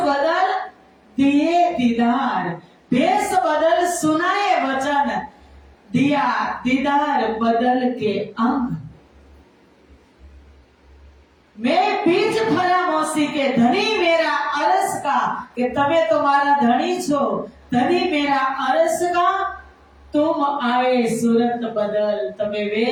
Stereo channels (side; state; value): both; identical; correlation 1.00